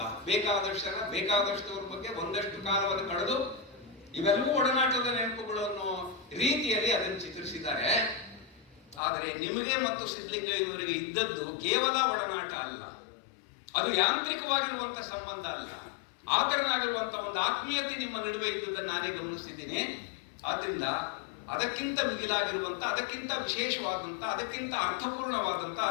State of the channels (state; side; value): drops out; right; at 9.0 s